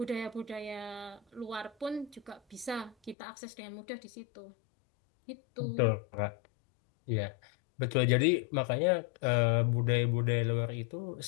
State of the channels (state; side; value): drops out; right; at 3.2 s